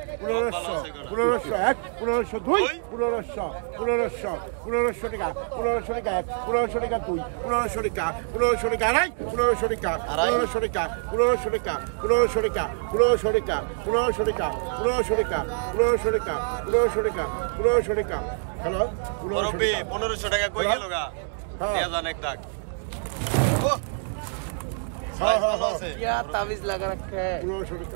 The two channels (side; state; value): left; silent; 61 dB below the other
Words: 1500 টাকা কই গেল গা নেজান এক দাগ ও সাইজ ভালো আছে তাবিজ লাগা রাখে